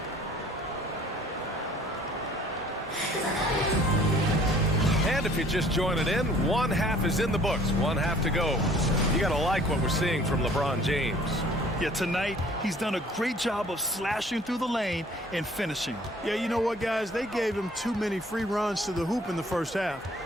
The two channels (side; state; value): both; normal; correlation 0.55